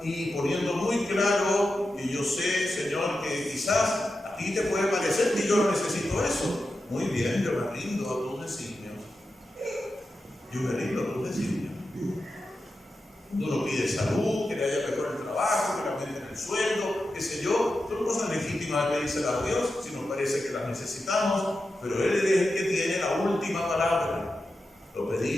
y poniendo muy claro que yo sé, Señor, que quizás a ti te puede parecer que yo no necesito eso. Muy bien, yo me rindo a tus designios. Yo me rindo a tus designios. Uno pide salud, que le haya mejor el trabajo, que le aumenten el sueldo, qué sé yo. Son cosas legítimas de pedírselas a Dios si nos parece que las necesitamos, pero Él es el que tiene la última palabra. Lo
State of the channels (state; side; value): normal; both; correlation 0.90